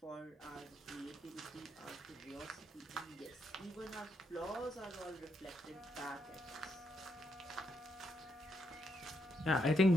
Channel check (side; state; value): both; normal; correlation 0.79